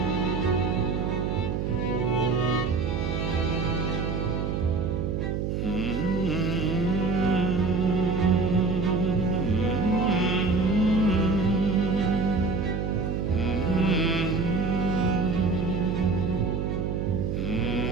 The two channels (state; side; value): noise; right; hum, 1 dB below the sound